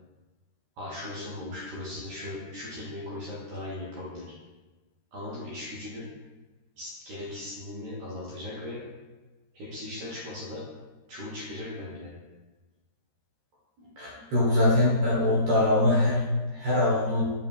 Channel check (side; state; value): left; late; 13 ms